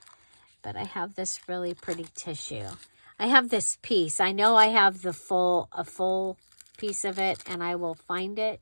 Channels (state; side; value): inverted; both; correlation -1.00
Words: but I have this really pretty tissue. I have this piece. I know I have a full piece of it, and I will find it.